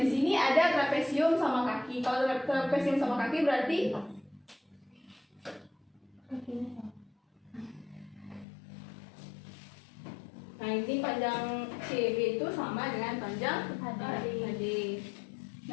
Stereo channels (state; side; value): drops out; right; at 8.5 s